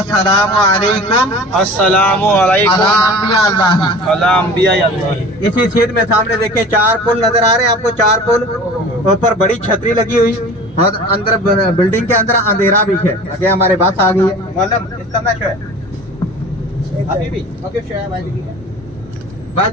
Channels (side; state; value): both; normal; correlation 0.40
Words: सलाम अलैकुम अस्सलामु अलैकुम अला अंबिया अल्लाह। अला अंबिया अल्लाह। इसी छेद में सामने देखिए 4 पुल नजर आ रहे हैं आपको, 4 पुल, ऊपर बड़ी छतरी लगी हुई, और अंदर बिल्डिंग के अंदर अंधेरा भी है। आगे हमारे बस आ गई है, मतलब इसका मैच है अभी भी ओके